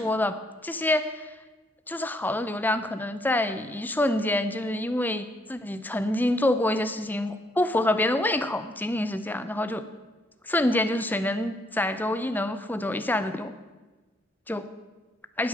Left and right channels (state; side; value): normal; both; correlation 0.71